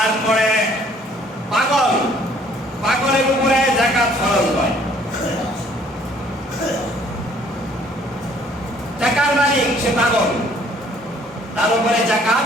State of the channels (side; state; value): both; normal; correlation 0.60